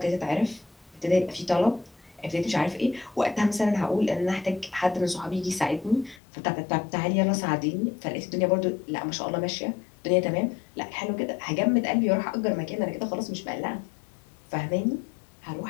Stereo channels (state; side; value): drops out; right; at 6.2 s